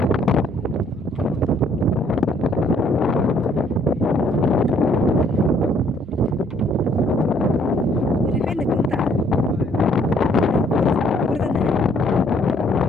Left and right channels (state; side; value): normal; both; correlation 0.64